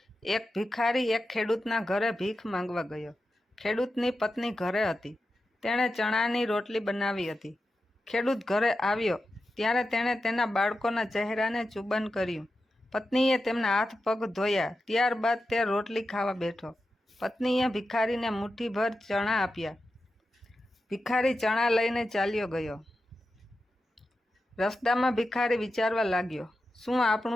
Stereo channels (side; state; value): both; normal; correlation 0.91